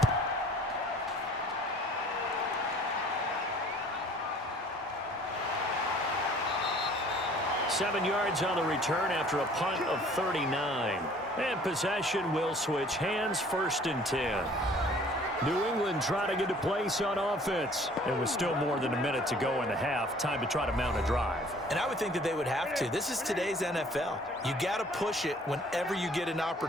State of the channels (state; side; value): normal; both; correlation 0.54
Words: 7 yards on the return after a punt of 39. And possession will switch hands, 1st and 10. New England trying to get a place on offense. It was still more than a minute to go in the half. Time to try to mount a drive. And I would think that they would have to. This is today's NFL. You got to push it whenever you get an